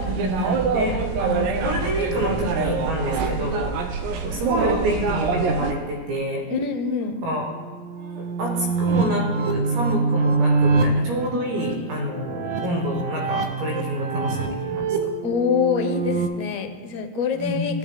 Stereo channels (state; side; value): late; left; 17 ms